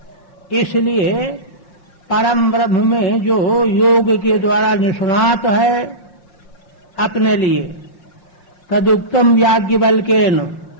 इसलिए परम ब्रह्म में जो योग के द्वारा निष्णात है अपने लिए। तदुक्तम याज्ञवल्क्येन,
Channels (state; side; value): late; right; 5.7 ms